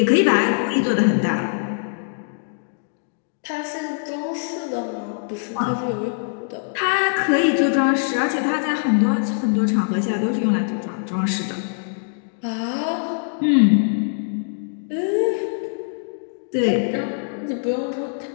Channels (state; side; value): silent; right; digital silence